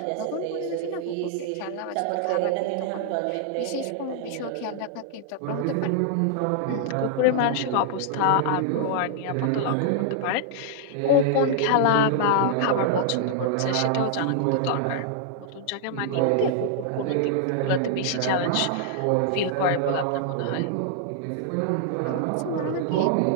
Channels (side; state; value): both; different; correlation -0.01